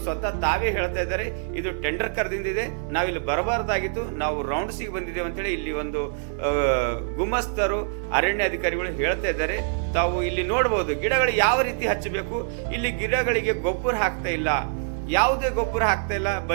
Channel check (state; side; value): silent; left; 62 dB below the other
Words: ಸ್ವತಃ ತಾವೇ ಹೇಳ್ತಾ ಇದ್ದಾರೆ, ಇದು ಟೆಂಡರ್ ಕರೆದಿಂದಿದೆ, ನಾವಿಲ್ಲಿ ಬರಬಾರ್ದಾಗಿತ್ತು, ನಾವು ರೌಂಡ್ಸಿಗೆ ಬಂದಿದ್ದೇವೆ ಅಂತೇಳಿ ಇಲ್ಲಿ ಒಂದು ಗುಮಸ್ತರು ಅರಣ್ಯ ಅಧಿಕಾರಿಗಳು ಹೇಳ್ತಾ ಇದ್ದಾರೆ. ತಾವು ಇಲ್ಲಿ ನೋಡಬಹುದು ಗಿಡಗಳು ಯಾವ ರೀತಿ ಹಚ್ಚಬೇಕು. ಇಲ್ಲಿ ಗಿಡಗಳಿಗೆ ಗೊಬ್ಬರ ಹಾಕ್ತಾ ಇಲ್ಲ, ಯಾವುದೇ ಗೊಬ್ಬರ ಹಾಕ್ತಾ ಇಲ್ಲ,